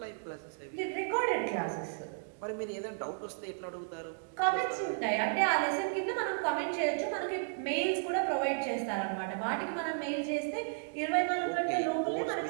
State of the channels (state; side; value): silent; left; digital silence